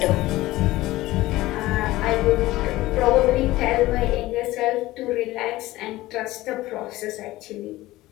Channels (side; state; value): right; quieter; 17.6 dB